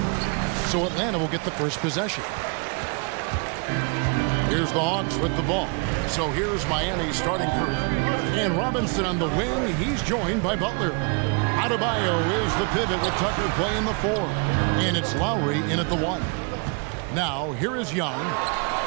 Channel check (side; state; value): left; quieter; 34.9 dB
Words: So Atlanta will get the first possession. Here's the Hawks with the ball. So here's Miami's starting group. And Robinson on the wing. He's joined by Butler. Adebayo is the pivot with Tucker playing the 4. And it's Lowry in at the 1. Now, here is Young.